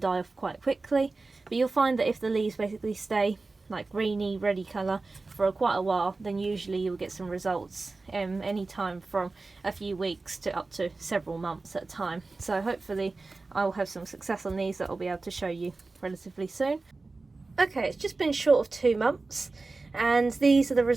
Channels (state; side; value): quieter; left; 3.6 dB